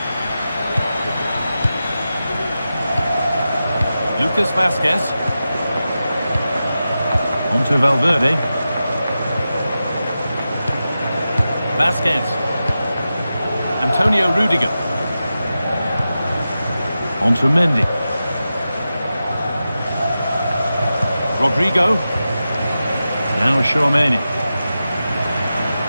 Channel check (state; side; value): inverted; both; correlation -0.92